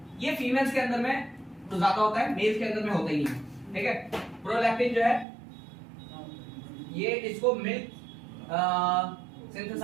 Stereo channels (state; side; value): drops out; left; at 5.2 s